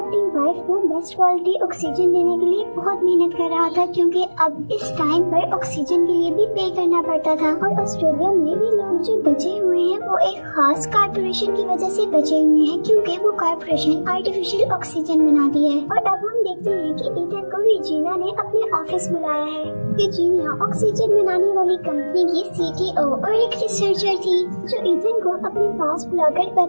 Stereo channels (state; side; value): inverted; both; correlation -1.00